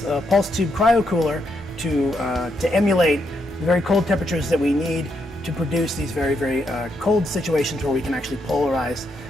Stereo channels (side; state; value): both; normal; correlation 0.79